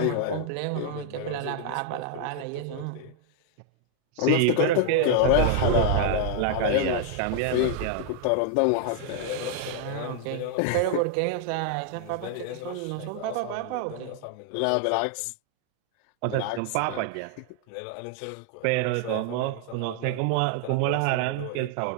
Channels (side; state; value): both; different; correlation 0.00